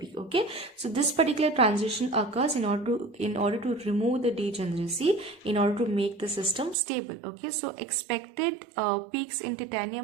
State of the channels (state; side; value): drops out; left; at 6.8 s